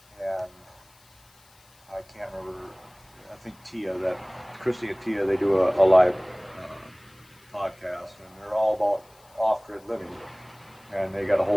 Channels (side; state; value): left; noise; hiss, 29 dB below the sound